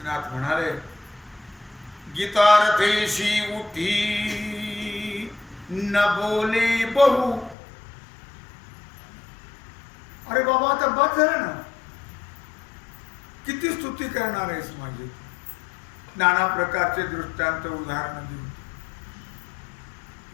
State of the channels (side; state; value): right; drops out; at 7.6 s